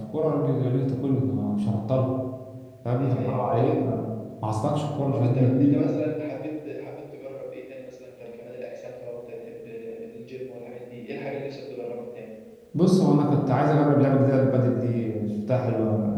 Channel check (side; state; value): both; identical; correlation 1.00